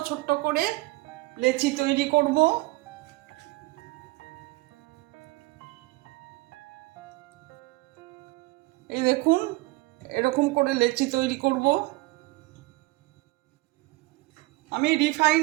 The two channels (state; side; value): quieter; left; 21.8 dB